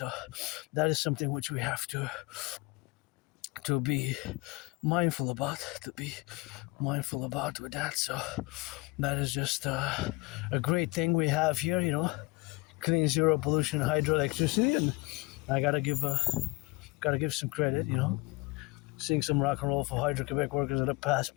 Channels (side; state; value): right; quieter; 23.5 dB